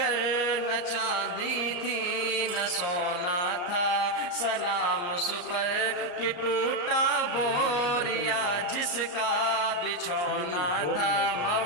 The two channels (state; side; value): late; right; 34 ms